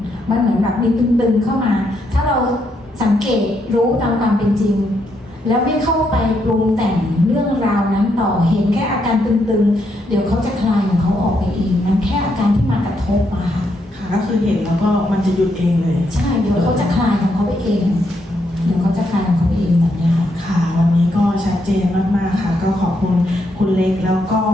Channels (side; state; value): both; normal; correlation 0.77